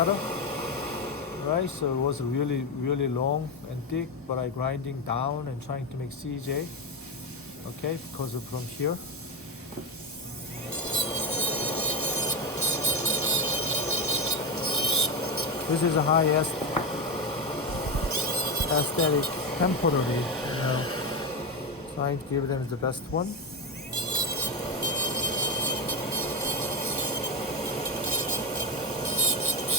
Right, so it was really long and thick, but I grinding down and trying to make CJ. Okay, because of from here. This is a highest aesthetic temporary, you know, trying to give them the best one.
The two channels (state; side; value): normal; both; correlation 0.12